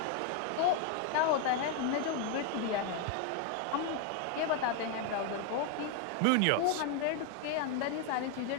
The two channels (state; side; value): different; both; correlation 0.01